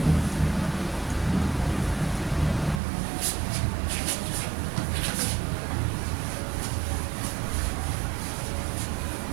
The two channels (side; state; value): left; drops out; at 2.8 s